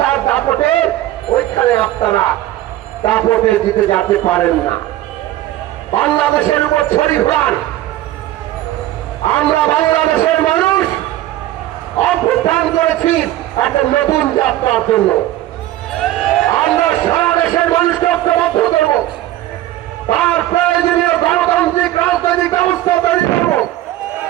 দাপটে ওইখানে আপনারা দাপটে জিতে যেতে পারেন না। বাংলাদেশের উপর ছড়ি ঘোরান। আমরা বাংলাদেশের মানুষ অভ্যুত্থান করেছি একটা নতুন যাত্রার জন্য। আমরা সারা দেশের মানুষকে ঐক্যবদ্ধ করব, তার প্রয়োজনীয় গণতান্ত্রিক রাজনৈতিক ব্যবস্থা তৈরি করব।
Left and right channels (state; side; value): quieter; left; 14.5 dB